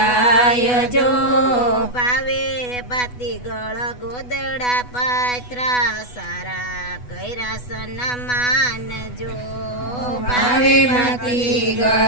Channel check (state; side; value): late; right; 8.1 ms